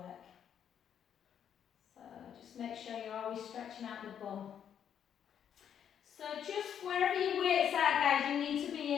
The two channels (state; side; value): quieter; right; 8.8 dB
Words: So just make sure you're always stretching out the bum. So just wherever your weights are, guys, you need to be